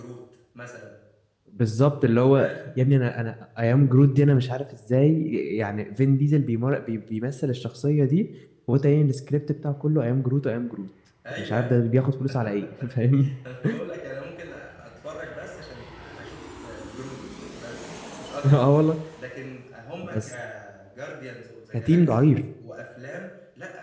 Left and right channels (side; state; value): both; identical; correlation 1.00